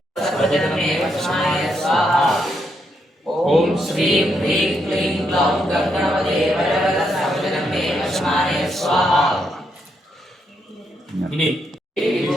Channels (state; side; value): normal; both; correlation 0.78